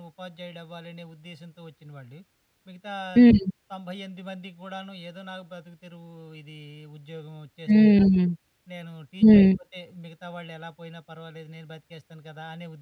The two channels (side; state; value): both; identical; correlation 1.00